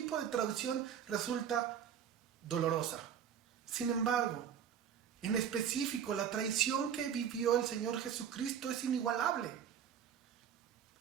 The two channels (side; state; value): left; quieter; 8.5 dB